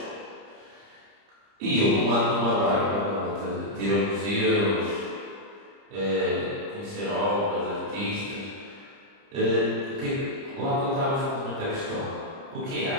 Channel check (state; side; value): late; left; 30 ms